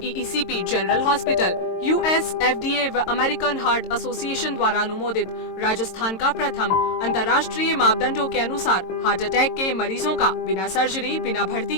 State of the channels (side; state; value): right; late; 22 ms